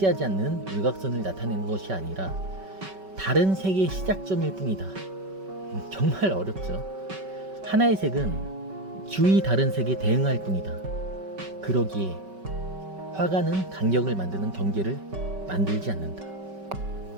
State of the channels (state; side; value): late; left; 5.2 ms